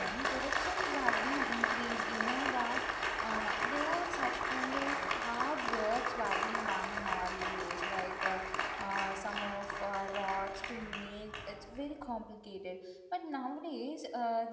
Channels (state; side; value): identical; both; correlation 1.00